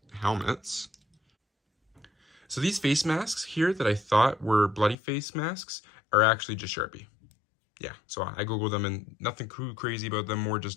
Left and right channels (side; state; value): right; drops out; at 5.0 s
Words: helmets. So these face masks here that I thought were bloody face masks are actually just Sharpie. Yeah, so I Googled them, and nothing too crazy about them, more